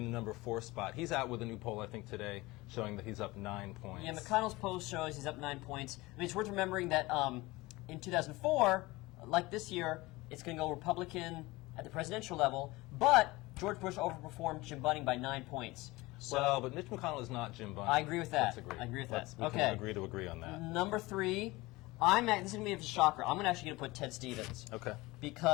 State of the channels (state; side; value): quieter; right; 21.1 dB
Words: 4 spot. He's out with a new poll, I think, today, showing that he's up 9 points. Yeah, McConnell's poll shows he's up 9 points. I mean, it's worth remembering that in 2004, like this year, it's going to go Republican at the presidential level, but George Bush overperformed Jim Bunning by 9 points. So, well, but Mitch McConnell is not Jim Bunning. I agree with that. Let's agree. I agree with that. We can agree to agree on that. Number 3, this is going to be a shocker. I'm actually going to put Ted Stevens. Okay.